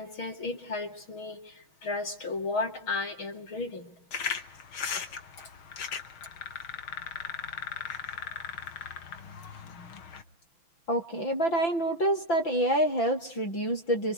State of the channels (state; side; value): late; right; 6.4 ms